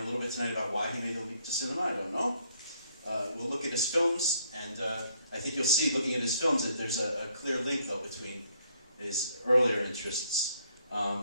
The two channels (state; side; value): inverted; both; correlation -0.68